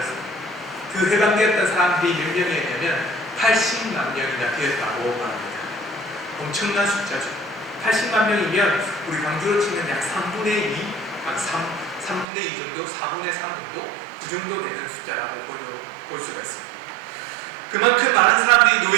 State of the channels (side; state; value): left; drops out; at 12.2 s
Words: 그 해방되었던 사람들이 몇 명이었냐면 80만 명이나 되었다고 말합니다. 엄청난 숫자죠. 80만 명이면 우리 강주로 치면 약 3분의 2, 3분의 2 정도, 4분의 3 정도, 그 정도 되는 숫자라고 볼 수가 있습니다. 그만큼 많은 사람들이